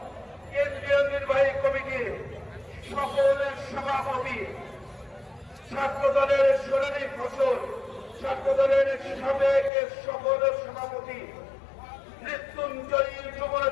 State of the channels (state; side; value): drops out; right; at 9.7 s